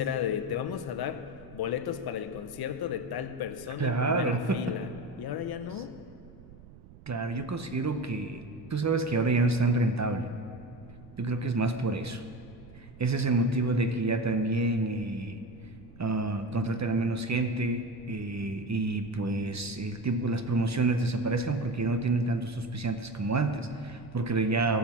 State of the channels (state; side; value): noise; right; rumble, 20 dB below the sound